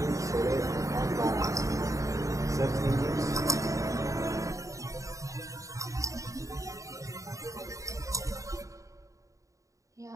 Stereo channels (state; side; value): late; left; 0.16 ms